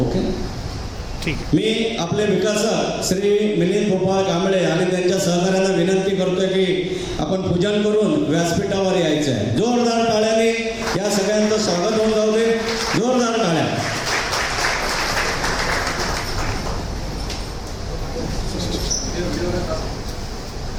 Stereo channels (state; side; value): identical; both; correlation 1.00